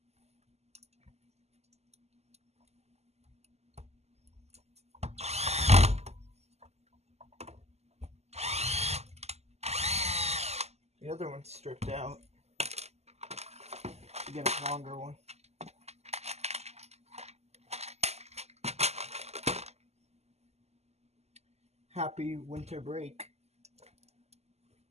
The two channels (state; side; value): late; left; 0.31 ms